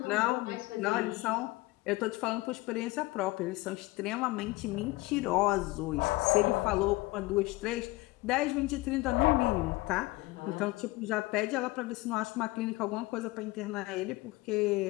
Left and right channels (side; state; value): right; quieter; 21.1 dB